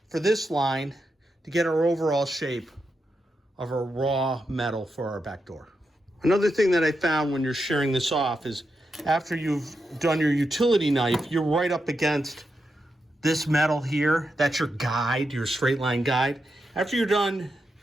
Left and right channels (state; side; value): normal; both; correlation 0.86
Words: for this line to get our overall shape of our raw metal for our back door. Another thing that I found when you're shearing this off is after you've done your utility knife, you're right up against this metal here. That's your guide, your straight line guide. After you're done